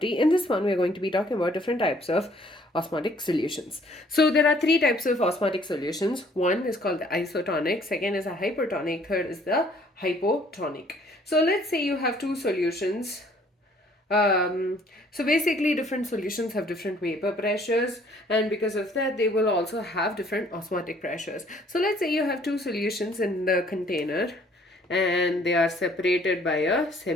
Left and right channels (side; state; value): both; normal; correlation 0.60